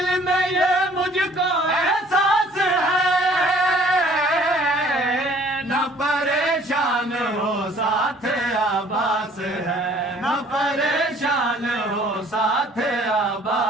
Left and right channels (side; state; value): both; normal; correlation 0.56